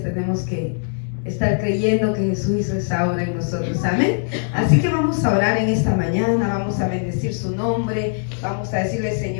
tenemos que estar creyendo que Jesús hizo esa obra en nosotros, amén. Así que vamos a orar en esta mañana, vamos a bendecir su nombre, vamos a decirle:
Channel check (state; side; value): silent; right; digital silence